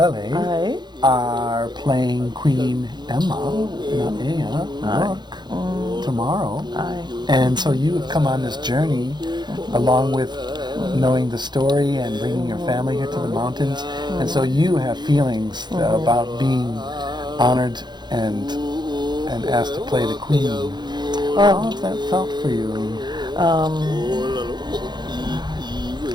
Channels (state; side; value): late; left; 0.21 ms